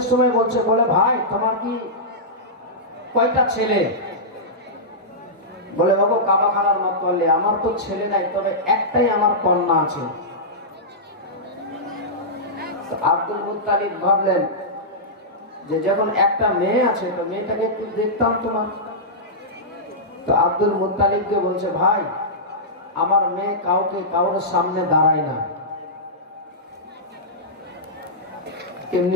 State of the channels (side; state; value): both; normal; correlation -0.13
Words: সময় বলছে, বলে ভাই তোমার কি কয়টা ছেলে? বলে বাবু কাবাখানার মতওয়াল্লি, আমার তো ছেলে নাই, তবে একটাই আমার কন্যা আছে। আব্দুল মুত্তালিব ভাবলেন যে যখন একটা মেয়ে আছে, তো মেয়েটাকে একটু দেখতাম তোমার। তো আব্দুল মুত্তালিবকে বলছে, ভাই আমার মেয়ে কাউর সামনে দাঁড়ায় না। কেমনি